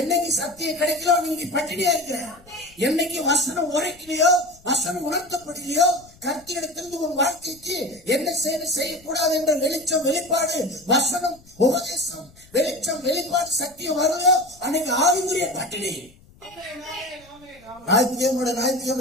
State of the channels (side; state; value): left; noise; rumble, 26 dB below the sound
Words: சத்தியம் கிடைக்கலோ நீங்க பட்டினியா இருக்கிற, என்னைக்கு வசனம் உரைக்கலையோ வசனம் உணர்த்தப்படலையோ கர்த்தரிடத்திலிருந்து உன் வாழ்க்கைக்கு என்ன செய்யக்கூடாது என்ற வெளிச்சம் வெளிப்பாடு வசனம் உபதேசம் வெளிச்சம் வெளிப்பாடு சத்தியம் வருதோ அன்னைக்கு ஆவிக்குரிய பட்டினி.